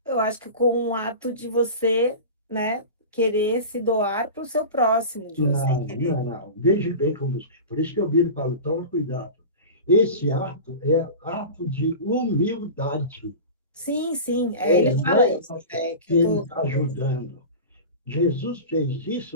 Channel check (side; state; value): both; inverted; correlation -0.31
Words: Eu acho que com um ato de você, né, querer se doar para o seu próximo, de você Não, querer. não, não. Veja bem como. Por isso que eu viro e falo, toma cuidado. Esse ato é ato de humildade. Sim, ele Não fala é isso, é que que eu ele tô. está ajudando. Jesus fez